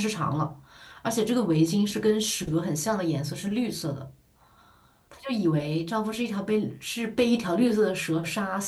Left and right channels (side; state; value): both; identical; correlation 1.00